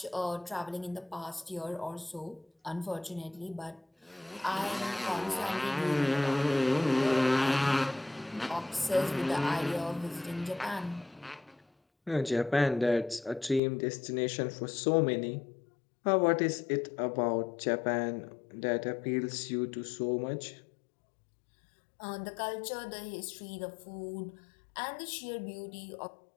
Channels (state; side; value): drops out; right; at 13.6 s